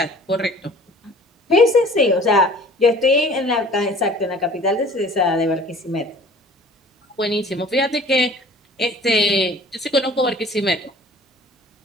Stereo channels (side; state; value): both; normal; correlation 0.48